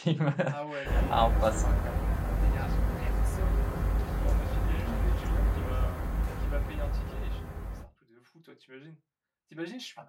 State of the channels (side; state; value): both; identical; correlation 1.00